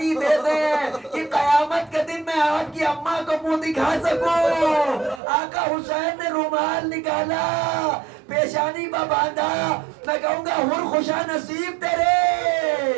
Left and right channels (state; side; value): drops out; left; at 5.2 s